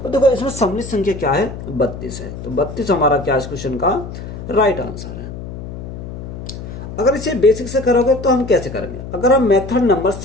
तो देखो इसमें सम्मिलित संख्या क्या है, 32 है। तो 32 हमारा क्या इस क्वेश्चन का राइट आंसर है। अगर इसे बेसिक से करोगे तो हम कैसे करेंगे, अगर हम मेथड नंबर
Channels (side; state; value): left; noise; hum, 10 dB below the sound